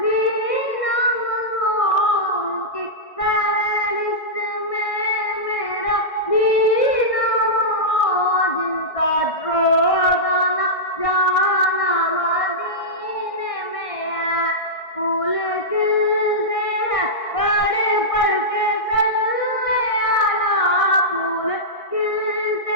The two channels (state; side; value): late; right; 1.6 ms